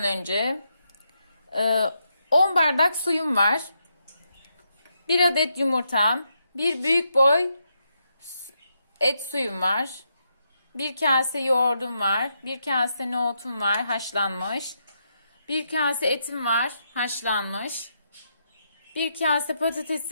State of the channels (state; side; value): inverted; both; correlation -0.81